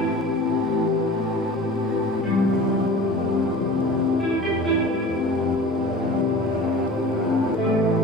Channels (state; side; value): normal; both; correlation 0.39